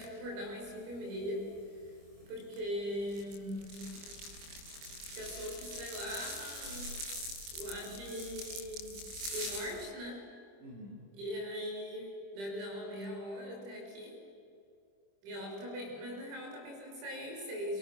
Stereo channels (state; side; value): late; left; 25 ms